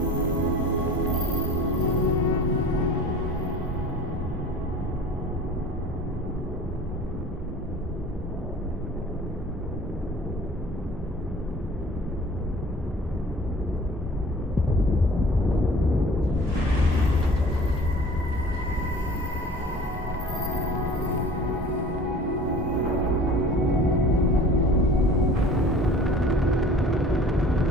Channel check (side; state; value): both; normal; correlation 0.45